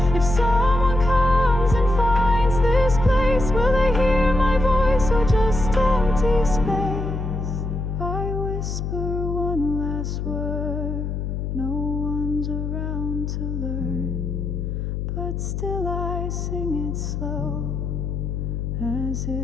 If someone comes and finds this place, will they hear my voice or just empty space? I whisper one last word, no one's around to learn, but still I sing it slow, as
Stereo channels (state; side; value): noise; left; hum, 3 dB below the sound